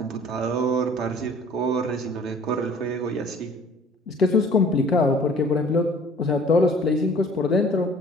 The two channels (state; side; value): normal; both; correlation 0.51